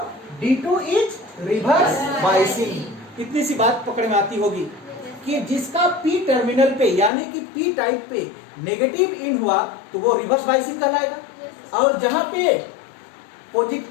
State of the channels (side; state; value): right; drops out; at 7.1 s